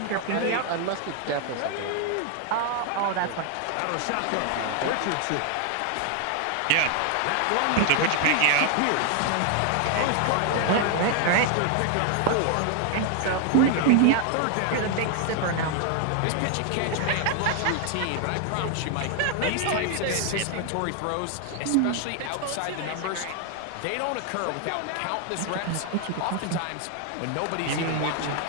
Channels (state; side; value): different; both; correlation 0.00